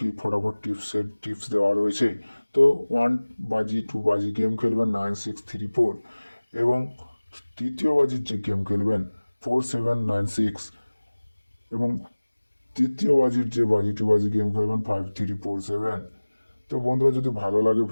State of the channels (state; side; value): inverted; both; correlation -1.00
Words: ফটাফট টিপস দেওয়া রয়েছে। তো 1 বাজি 2 বাজি গেম খেলবেন 9634, এবং তৃতীয় বাজির যে গেম খেলবেন 4796, এবং তৃতীয় বাজির যে বাজি 2 বাজি গেম খেলবেন 5347। তো বন্ধুরা, যদি ভালো লাগে